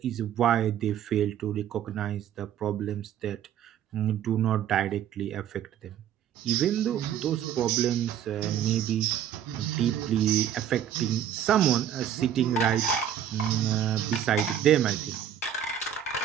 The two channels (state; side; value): quieter; left; 9.7 dB